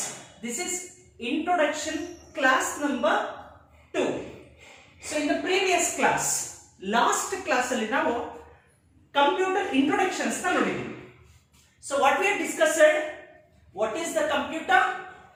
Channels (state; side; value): identical; both; correlation 1.00